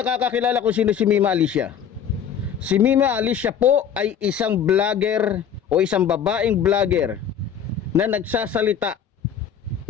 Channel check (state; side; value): quieter; right; 8.1 dB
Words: kung sino si Mima Alicia, si Mima Alicia po ay isang vlogger o isang babaeng vlogger na nagsasalita